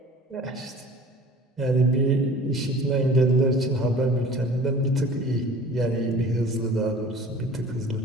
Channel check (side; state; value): both; normal; correlation 0.44